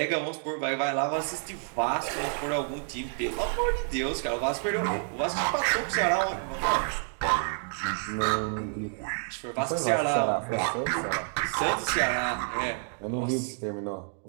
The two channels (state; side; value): silent; left; 57 dB below the other